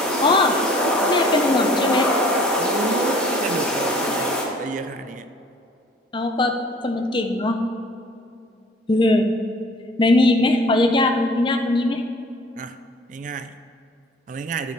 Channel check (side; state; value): both; normal; correlation 0.51